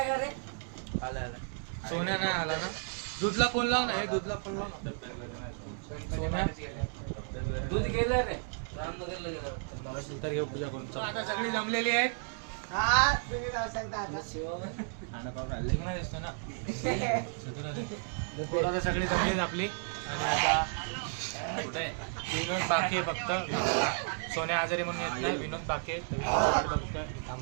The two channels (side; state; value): left; silent; 56 dB below the other